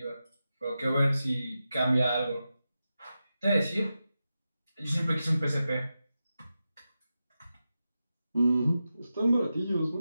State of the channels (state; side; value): inverted; both; correlation -0.91